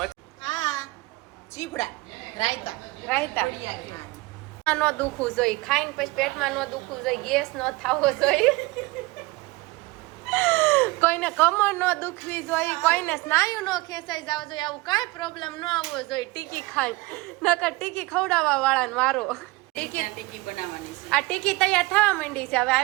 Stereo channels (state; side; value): quieter; left; 22.7 dB